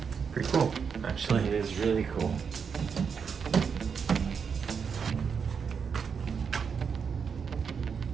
Pretty cool, actually. It is really cool.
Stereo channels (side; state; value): left; quieter; 6.3 dB